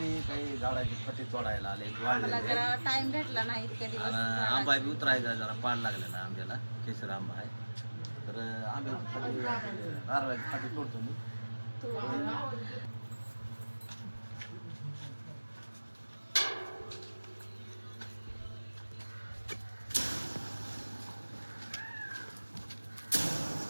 काही झाडाची फटी तोडायला आले मला जरा टाइम भेटला नाही इतक्या दिवस. आंबा बी उतरायचा जरा पाड लागलेला आंब्याला केसर आंबा आहे तर आंब्याची फटी नारळाची फटी तोडतो मी.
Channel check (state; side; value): inverted; both; correlation -1.00